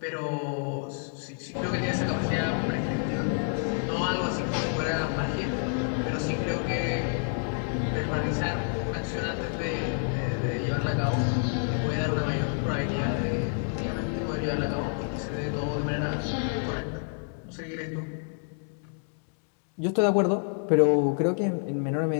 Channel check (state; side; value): silent; right; 59 dB below the other